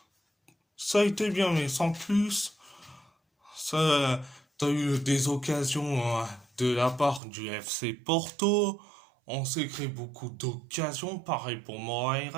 Ça a été bien mais sans plus. Ça, t'as eu des occasions de la part du FC Porto. On s'est créé beaucoup d'occasions, pareil pour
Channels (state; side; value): drops out; left; at 7.2 s